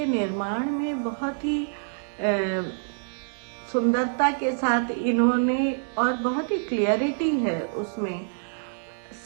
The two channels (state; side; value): silent; left; digital silence